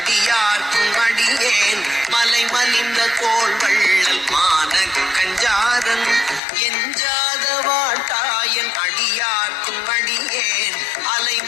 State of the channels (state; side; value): drops out; right; at 6.4 s